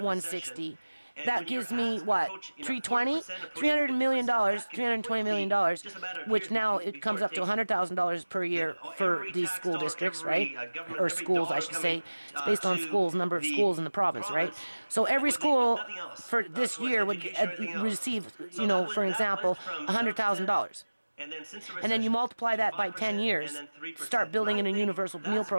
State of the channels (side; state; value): both; inverted; correlation -1.00